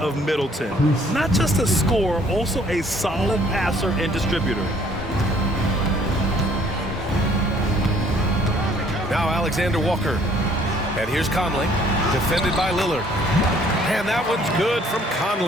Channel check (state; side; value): normal; both; correlation 0.60